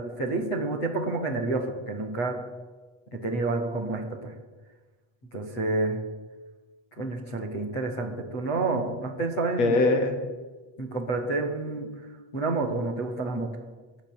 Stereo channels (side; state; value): right; late; 8.2 ms